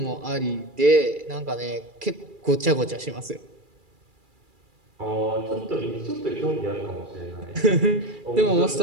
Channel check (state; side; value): late; left; 2.3 ms